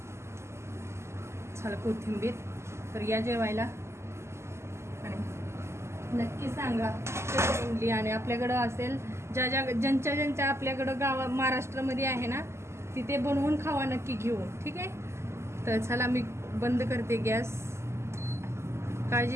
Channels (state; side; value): late; left; 0.13 ms